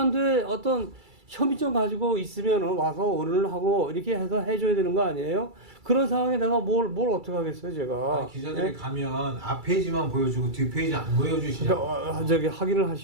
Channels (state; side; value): late; left; 2.3 ms